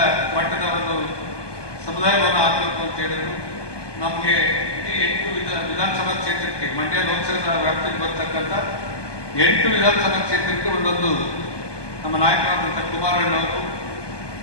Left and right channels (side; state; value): right; late; 1.2 ms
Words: ಮಟ್ಟದ ಒಂದು ಸಮುದಾಯವನ್ನು ಆಗಬೇಕು ಅಂತ ಹೇಳಿದ್ರು. ನಮಗೆ ಇಡೀ 8 ವಿಧಾನಸಭಾ ಕ್ಷೇತ್ರಕ್ಕೆ, ಮಂಡ್ಯ ಲೋಕಸಭಾ ವ್ಯಾಪ್ತಿಗೆ ಬರ್ತಕ್ಕಂಥ 8 ವಿಧಾನಸಭಾ ಕ್ಷೇತ್ರಕ್ಕೆ ಒಂದೊಂದು ನಮ್ಮ ನಾಯಕರಾದಂಥ ಕುಮಾರಣ್ಣವರು